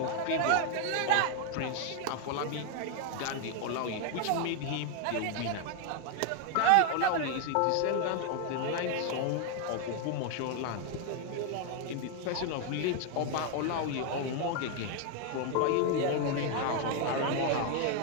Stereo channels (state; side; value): different; both; correlation 0.01